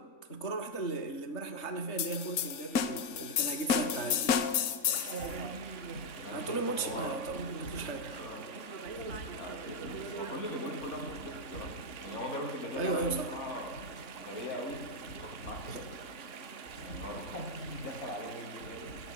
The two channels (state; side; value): late; right; 3.6 ms